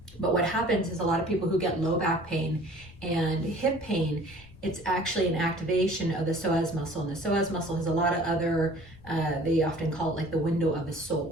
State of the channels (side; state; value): left; noise; rumble, 21 dB below the sound